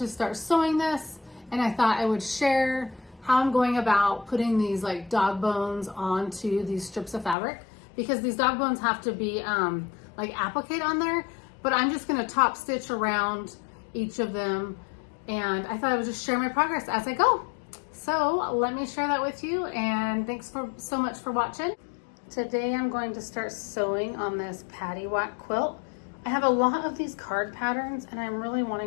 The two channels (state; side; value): drops out; right; at 7.4 s